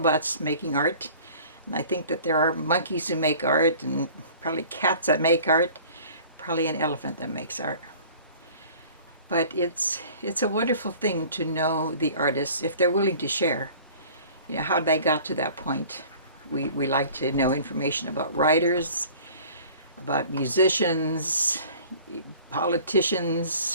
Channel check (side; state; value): both; inverted; correlation -0.47